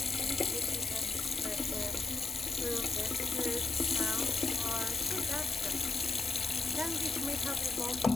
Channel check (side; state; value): right; quieter; 3.8 dB